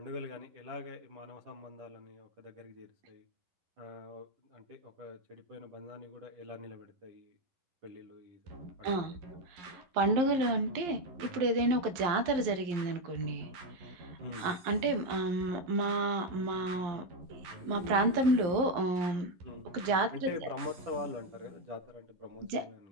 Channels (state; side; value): late; left; 11 ms